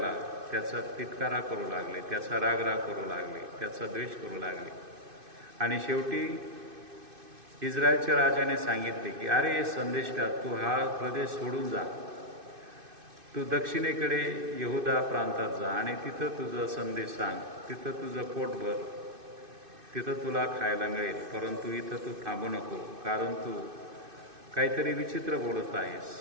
त्याचा तिटकारा करू लागले, त्याचा रागराग करू लागले, त्याचा द्वेष करू लागले. आणि शेवटी इस्रायलच्या राजाने सांगितले की अरे संदेष्टा, तू हा प्रदेश सोडून जा, तू दक्षिणेकडे यहुदा प्रांतात जा आणि तिथं तुझं संदेश सांग, तिथं तुझं पोट भर, तिथं तुला खायला मिळेल. परंतु इथं तू थांबू नको, कारण तू काहीतरी विचित्र बोलत आहेस,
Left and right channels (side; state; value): left; late; 2.6 ms